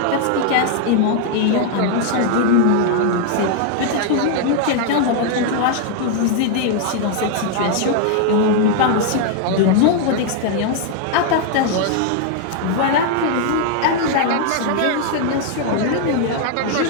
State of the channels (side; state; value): both; different; correlation 0.00